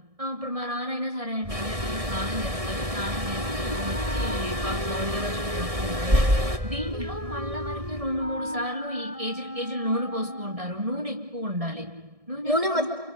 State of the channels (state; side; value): late; left; 1.6 ms